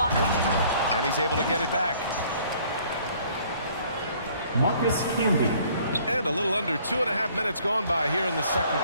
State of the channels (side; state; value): both; inverted; correlation -0.58